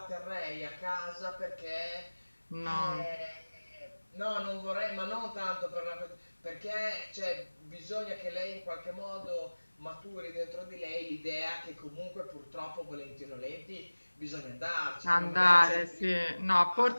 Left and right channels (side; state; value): both; inverted; correlation -1.00